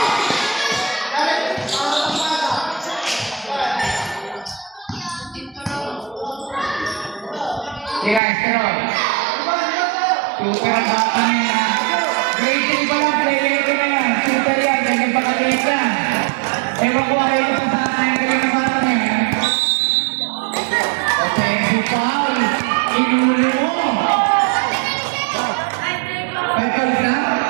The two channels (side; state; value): left; drops out; at 8.2 s